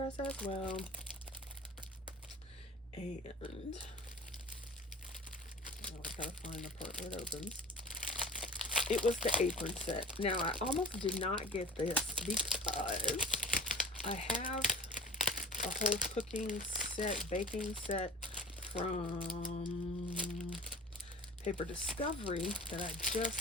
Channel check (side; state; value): both; normal; correlation 0.41